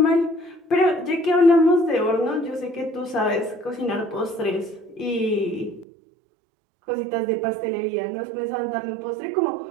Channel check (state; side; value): drops out; left; at 5.9 s